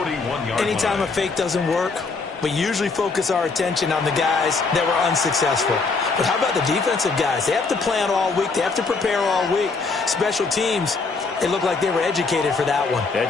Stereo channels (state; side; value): quieter; right; 4.2 dB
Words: Anytime a fake doesn't work, We usually focus our attention on the guys that were unsuccessful. But how about the defensive guys? They have to plan all week. They have to prepare all week. Special teams, they look like they were educated for that one.